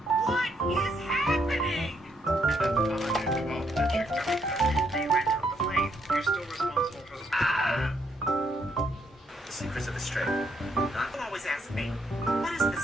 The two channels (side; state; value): both; normal; correlation 0.74